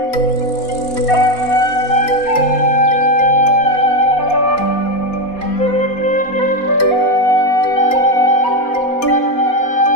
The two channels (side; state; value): right; late; 4.2 ms